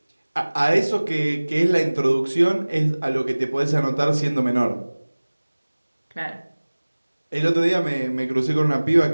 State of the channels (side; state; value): both; inverted; correlation -1.00